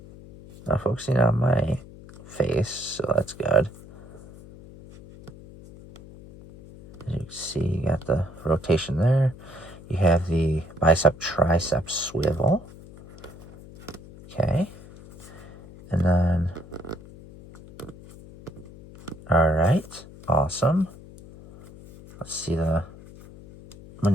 Not focusing on my face, so that's good. As you can see, you got the rotation there. You have the bicep tricep swivel. Okay. And then, all right, awesome. Let's see the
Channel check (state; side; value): noise; left; hum, 19 dB below the sound